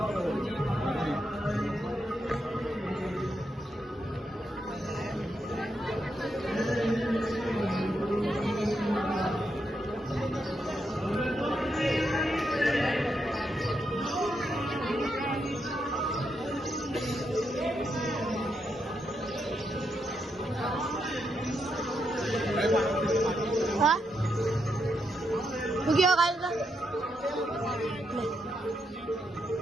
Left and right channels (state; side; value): normal; both; correlation 0.81